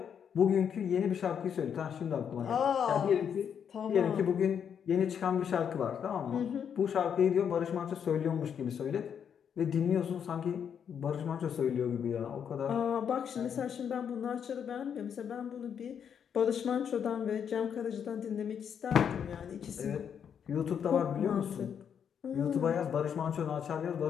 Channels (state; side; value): quieter; right; 7.9 dB